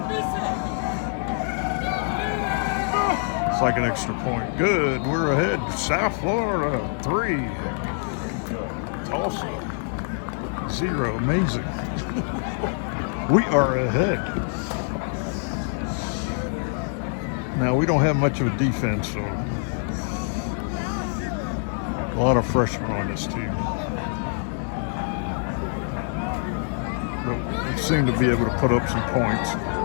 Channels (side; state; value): right; silent; 60 dB below the other